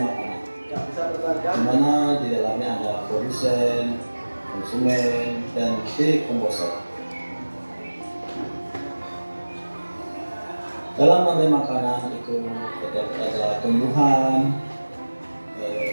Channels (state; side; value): inverted; both; correlation -1.00